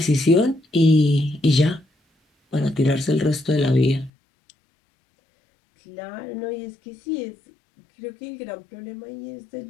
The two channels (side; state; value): right; drops out; at 4.1 s